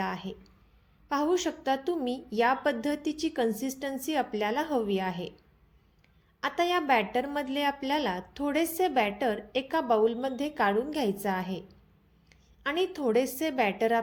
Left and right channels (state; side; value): identical; both; correlation 1.00